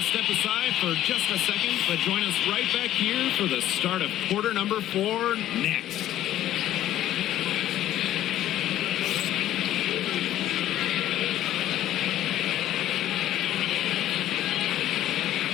step aside for just a second, but join us right back here for the start of quarter number 4 next.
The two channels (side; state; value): right; quieter; 13.0 dB